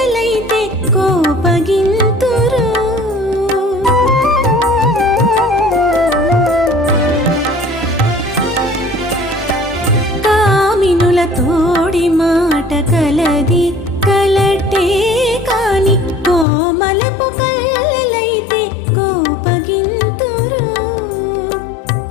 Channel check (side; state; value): right; drops out; at 16.4 s